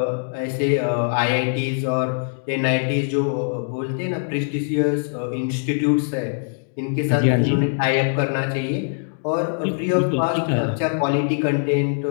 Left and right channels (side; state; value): right; silent; digital silence